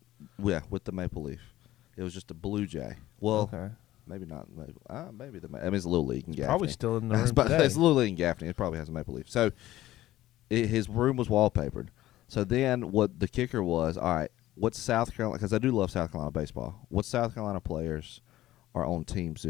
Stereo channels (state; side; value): quieter; right; 15.1 dB